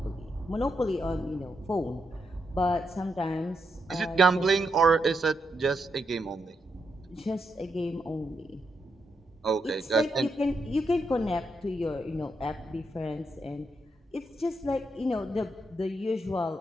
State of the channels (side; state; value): both; normal; correlation 0.81